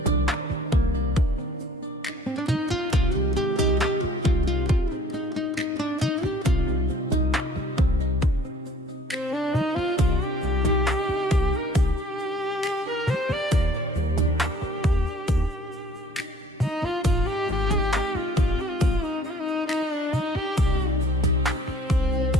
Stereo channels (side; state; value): both; normal; correlation 0.53